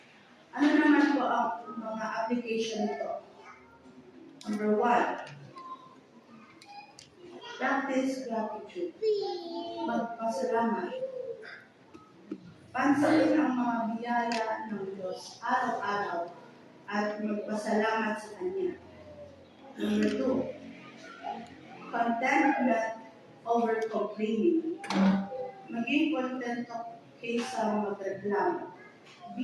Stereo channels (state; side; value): identical; both; correlation 1.00